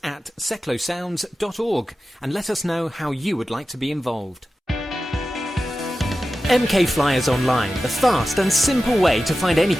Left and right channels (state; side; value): normal; both; correlation 0.93